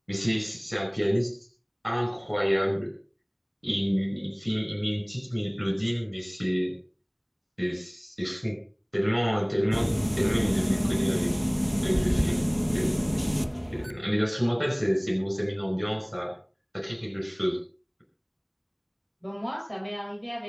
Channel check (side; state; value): both; identical; correlation 1.00